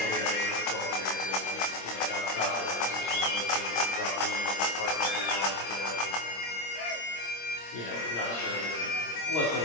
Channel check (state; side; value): late; right; 26 ms